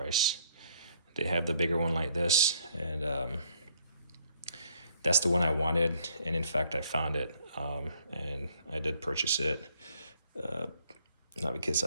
They have the bigger one like this, and that's the one I wanted. And in fact, I found it, and I did purchase it. Not because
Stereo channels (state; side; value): inverted; both; correlation -0.66